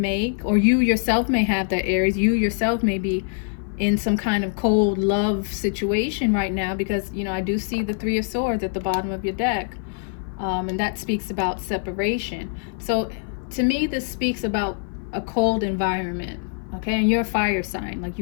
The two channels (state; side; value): silent; right; 57 dB below the other